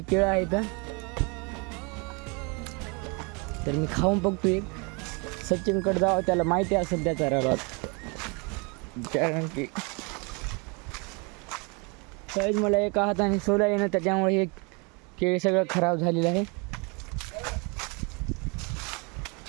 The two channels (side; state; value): left; quieter; 30.9 dB